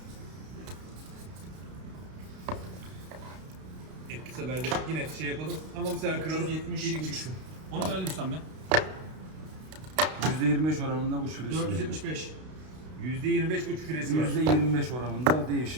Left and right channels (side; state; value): left; late; 32 ms